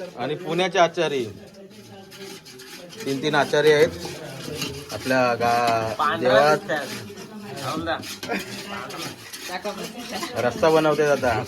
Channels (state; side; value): identical; both; correlation 1.00